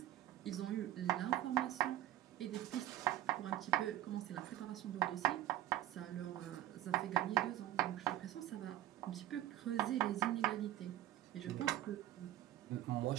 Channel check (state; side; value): quieter; left; 12.9 dB